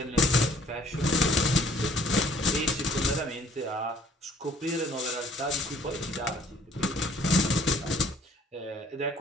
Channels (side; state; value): both; normal; correlation 0.58